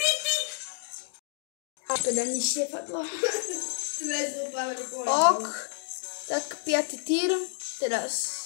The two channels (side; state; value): right; silent; digital silence